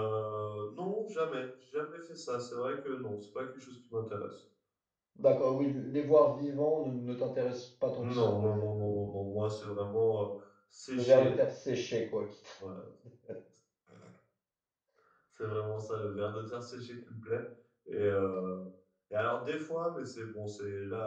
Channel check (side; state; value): both; identical; correlation 1.00